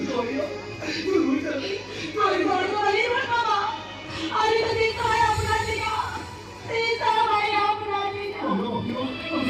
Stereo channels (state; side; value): identical; both; correlation 1.00